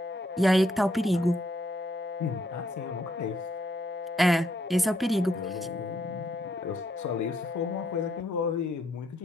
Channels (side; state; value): both; normal; correlation 0.72